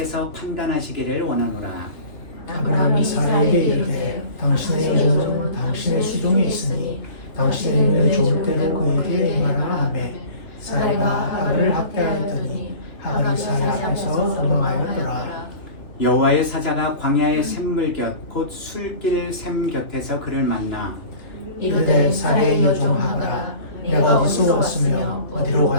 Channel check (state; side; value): late; right; 2.8 ms